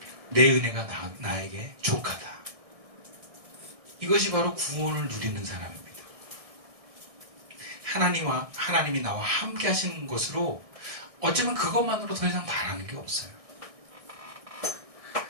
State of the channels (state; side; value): late; left; 1.6 ms